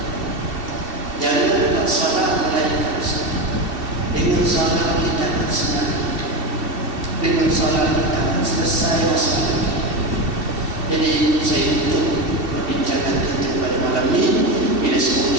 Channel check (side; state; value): left; late; 2.7 ms